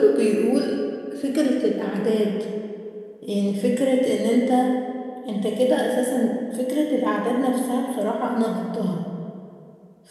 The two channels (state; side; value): identical; both; correlation 1.00